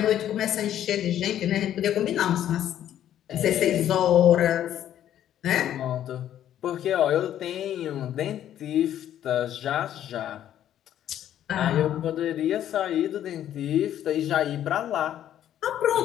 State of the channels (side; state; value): right; quieter; 11.2 dB